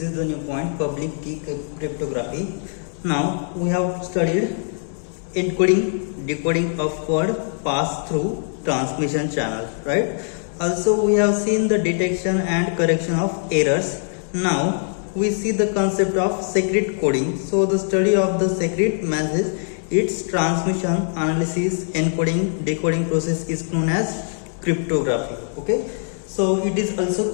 is the new point, public key cryptography. Now we have studied encoding, decoding of code passed through transmission channel, right? Also we have seen the detection and correction of errors. Now we see the concept of secret coding. So the study of the secret message, its transmission, analysis, encoding, decoding process is known as cryptography. Okay, so it is also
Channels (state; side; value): silent; right; digital silence